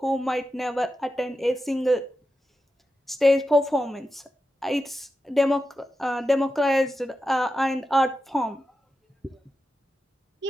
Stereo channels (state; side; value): normal; both; correlation 0.90